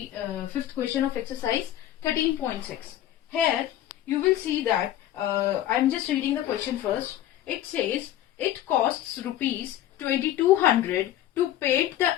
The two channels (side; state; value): right; quieter; 12.7 dB